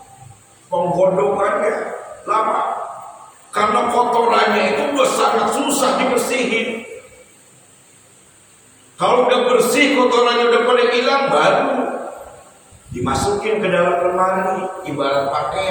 penggodokannya lama. Karena kotorannya itu udah sangat susah dibersihin. Kalau udah bersih, kotorannya udah pada hilang, baru dimasukin ke dalam lemari, ibarat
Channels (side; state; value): both; identical; correlation 1.00